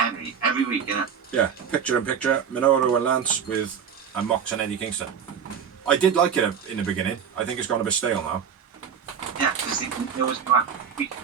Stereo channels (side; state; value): left; quieter; 7.4 dB